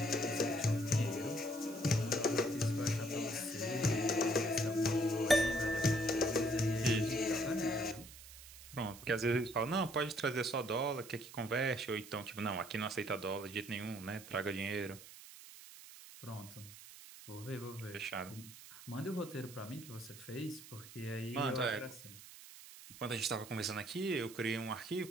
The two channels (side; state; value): right; noise; hiss, 16 dB below the sound